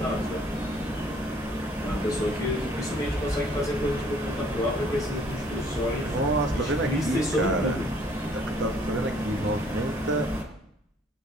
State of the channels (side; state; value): both; normal; correlation 0.59